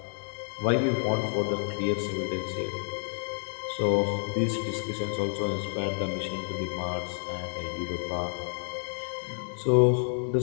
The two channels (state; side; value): silent; right; 58 dB below the other